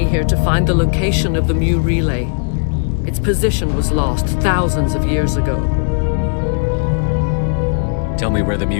here to find the location of the Mu relay. Its position was lost thousands of years ago. Tell me where the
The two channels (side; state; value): right; silent; 60 dB below the other